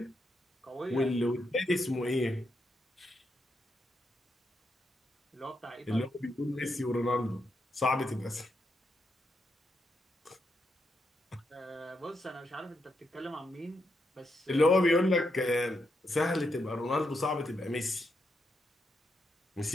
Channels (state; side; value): normal; both; correlation 0.82